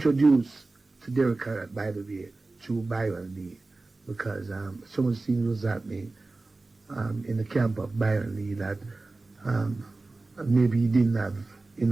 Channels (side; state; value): left; quieter; 3.3 dB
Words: to Derek Harrett, by the way, through Byron Lee, because so much things was happening in the camp of Byron Lee that maybe he didn't have